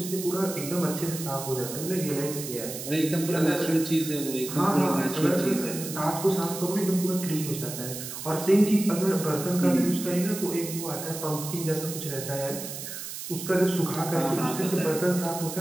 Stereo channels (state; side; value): noise; right; hiss, 8 dB below the sound